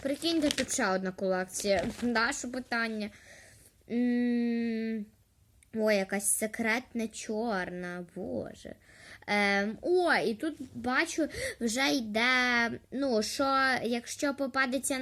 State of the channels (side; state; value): both; identical; correlation 1.00